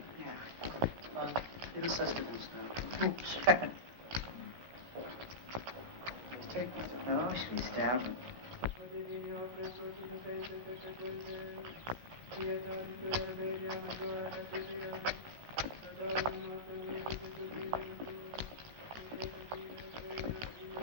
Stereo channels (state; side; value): late; left; 16 ms